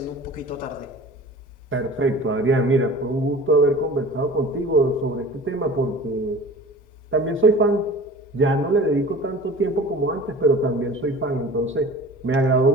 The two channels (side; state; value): both; normal; correlation 0.41